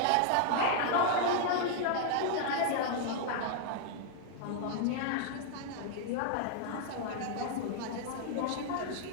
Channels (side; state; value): both; different; correlation 0.00